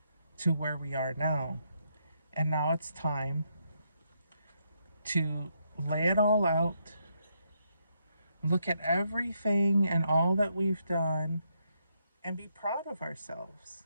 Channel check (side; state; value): both; inverted; correlation -0.78